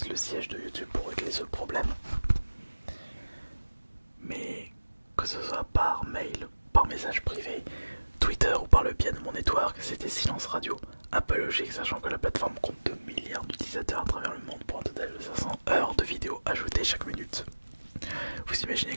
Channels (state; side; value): inverted; both; correlation -1.00